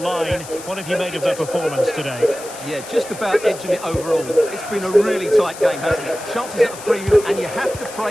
What have you made of their performance today? Yeah, just about edging it overall. It's been a really tight game, hasn't it? Chances at a premium, and you have to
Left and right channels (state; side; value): noise; left; hiss, 14 dB below the sound